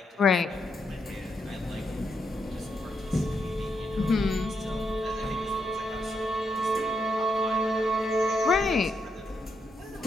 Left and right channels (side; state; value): both; normal; correlation 0.80